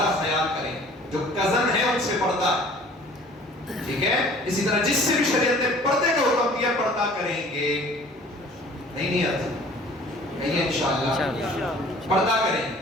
خیال کریں. جو کزن ہے ان سے پردہ, ٹھیک ہے. اسی طرح جس سے بھی شریعت نے پردے کا حکم دیا پردہ کریں گے. نہیں آتا نہیں انشاءاللہ پردہ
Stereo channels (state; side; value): normal; both; correlation 0.50